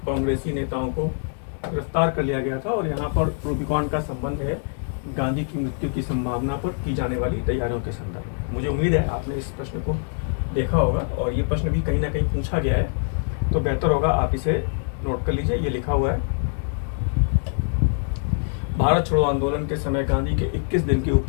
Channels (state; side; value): silent; right; 58 dB below the other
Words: कांग्रेसी नेताओं को गिरफ्तार कर लिया गया था। और यहाँ पर रूबिकॉन का संबंध है गांधी की मृत्यु की संभावना पर की जाने वाली तैयारियों के संदर्भ। मुझे उम्मीद है आपने इस प्रश्न को देखा होगा और ये प्रश्न भी कहीं ना कहीं पूछा गया है, तो बेहतर होगा आप इसे नोट कर लीजिए। ये लिखा हुआ है, भारत छोड़ो आंदोलन के समय गांधी के 21 दिन के